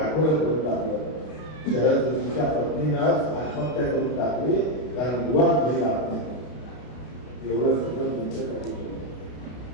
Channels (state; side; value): late; right; 32 ms